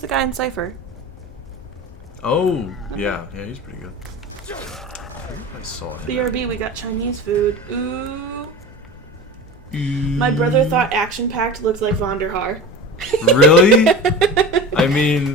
guy in Cypher. Oh, yeah, he's pretty good. I saw him. BRB, we got Chinese food. Ooh. My brother thought ActionPacked looked like Vonderhaar. Really? I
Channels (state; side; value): normal; both; correlation 0.32